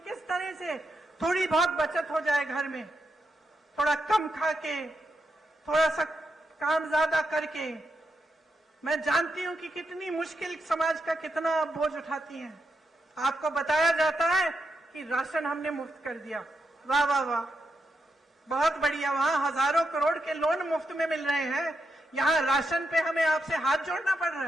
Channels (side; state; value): both; normal; correlation 0.84